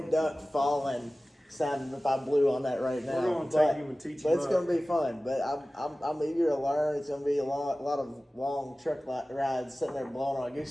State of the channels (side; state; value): both; normal; correlation 0.97